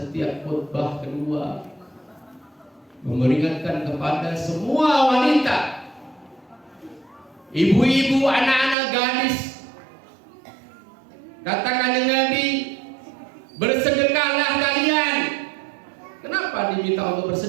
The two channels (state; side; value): drops out; left; at 8.8 s